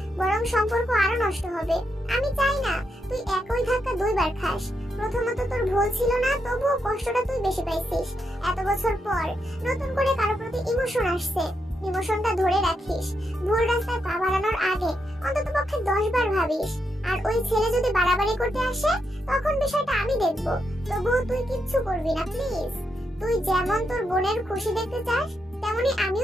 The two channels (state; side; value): normal; both; correlation 0.82